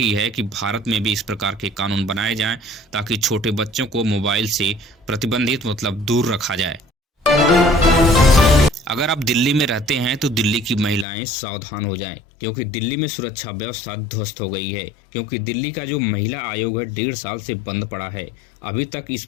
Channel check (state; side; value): drops out; right; at 11.1 s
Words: है कि भारत में भी इस प्रकार के कानून बनाए जाएं, ताकि छोटे बच्चों को मोबाइल से प्रतिबंधित दूर रखा जाए। अगर आप दिल्ली में रहते हैं तो दिल्ली की महिलाएं सावधान हो जाएं, क्योंकि दिल्ली में सुरक्षा व्यवस्था ध्वस्त हो गई है। क्योंकि दिल्ली का जो महिला आयोग है 1.5 साल से बंद पड़ा है। अभी तक इस